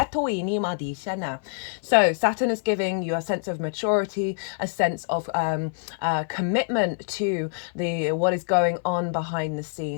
So Saturn is giving you a sense of maturity, a sense of commitment to what is going on behind the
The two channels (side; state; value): right; silent; 61 dB below the other